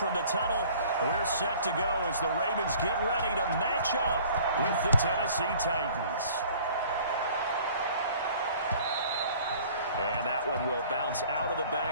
the tunnel. We're set to go as the Ravens get ready to match up with the Tennessee Titans. And that one will bounce out of the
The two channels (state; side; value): inverted; both; correlation -0.51